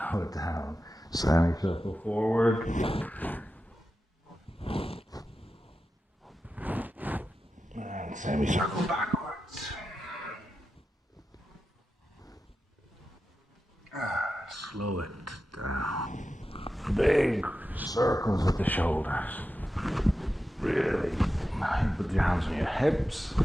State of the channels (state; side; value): normal; both; correlation 0.91